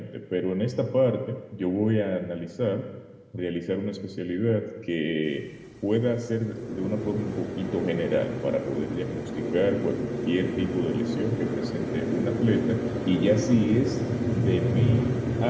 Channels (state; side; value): identical; both; correlation 1.00